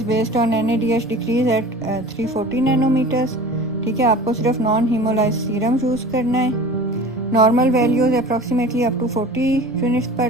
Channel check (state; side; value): normal; both; correlation 0.39